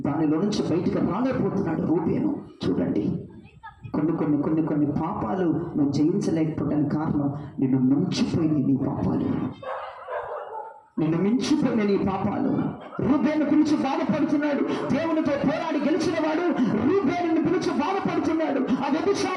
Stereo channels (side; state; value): both; identical; correlation 1.00